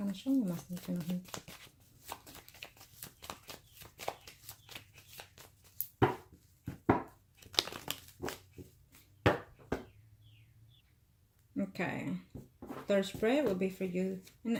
Now show me what must I need to know here. Okay, third spread will be for you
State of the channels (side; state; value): both; identical; correlation 1.00